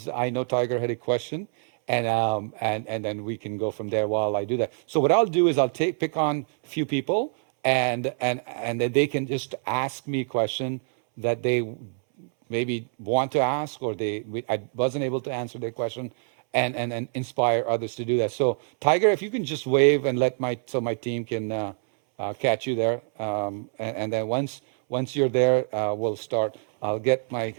I know Tiger had a question, and then we can go from there while I do that. So what I'll do is I'll pick on a few people, and then they can just ask me a question that they maybe want to ask, or I wasn't able to answer their question, and inspire others to do that. So Tiger, if you can just wave and let my team can catch you there, and then once you're there, we'll start. I'll get my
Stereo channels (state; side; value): silent; left; 61 dB below the other